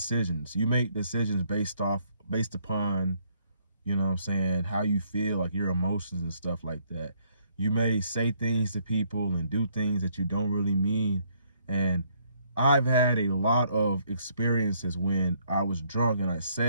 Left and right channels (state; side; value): inverted; both; correlation -0.69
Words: You make decisions based upon, what I'm saying, how you feel, like your emotions and stuff like that. You may say things to people and do things that you don't really mean. And I've had a lot of experiences when I was drunk and I